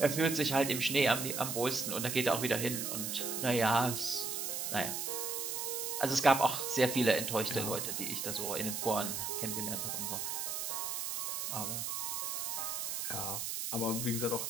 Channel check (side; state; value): right; noise; hiss, 2 dB below the sound